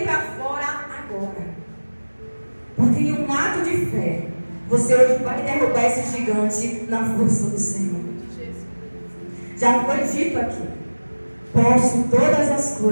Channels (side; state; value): both; inverted; correlation -1.00